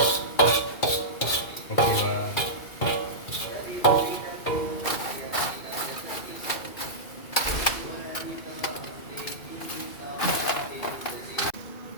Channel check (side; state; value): right; late; 2.4 ms